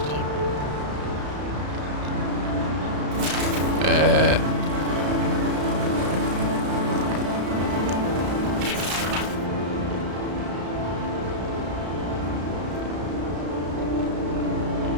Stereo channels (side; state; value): left; late; 33 ms